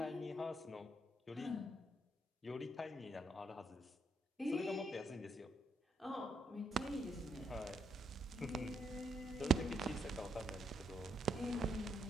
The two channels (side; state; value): both; normal; correlation 0.75